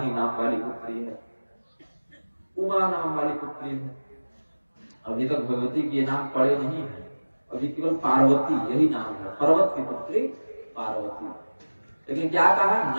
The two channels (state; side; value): inverted; both; correlation -1.00